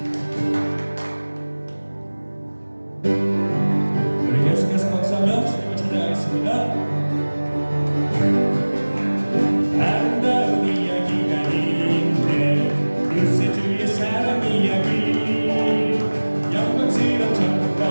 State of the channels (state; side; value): inverted; both; correlation -1.00